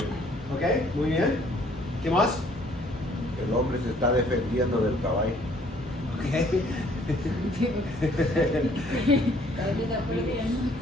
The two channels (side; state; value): both; normal; correlation 0.61